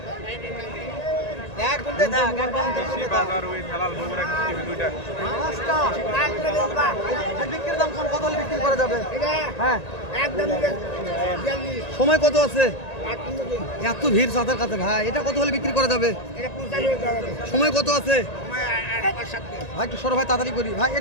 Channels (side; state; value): right; late; 1.9 ms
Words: এক ঘন্টা দেখ, এক ঘন্টা বাজার ওই হেলাল বগুড়া টিভি দুইটা। বিক্রির দাম কত হলে বিক্রি করা যাবে? হ্যাঁ, সময় কত আছে? এত ভিড় সাঁতার কাছে ভাই, এটা কত হলে বিক্রি করা যাবে? সময় কত আছে ভাই? একটু সরো ভাই, তাড়াতাড়ি করি ভাই।